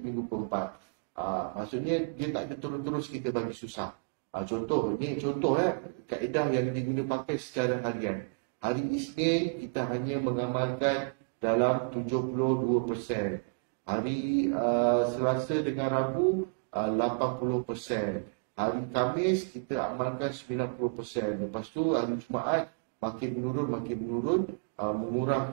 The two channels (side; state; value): left; quieter; 38.9 dB